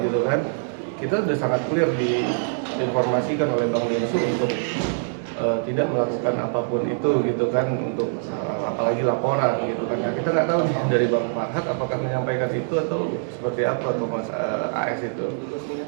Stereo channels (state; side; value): silent; left; 63 dB below the other